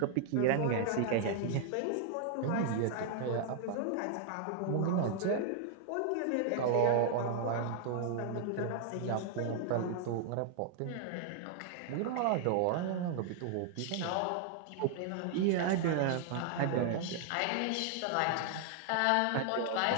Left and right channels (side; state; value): both; different; correlation 0.00